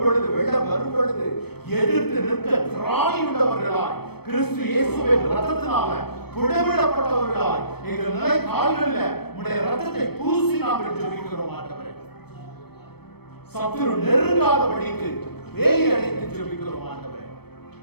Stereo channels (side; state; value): right; late; 0.97 ms